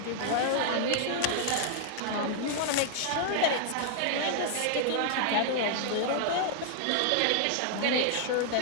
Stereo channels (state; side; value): different; both; correlation -0.01